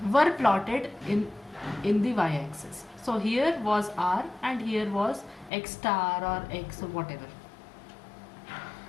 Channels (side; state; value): right; drops out; at 5.5 s